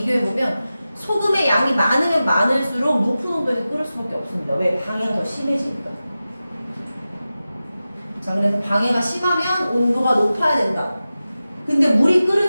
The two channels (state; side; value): inverted; both; correlation -0.94